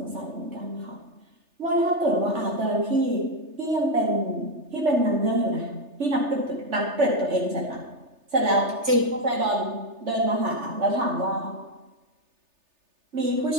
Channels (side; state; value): left; late; 3.3 ms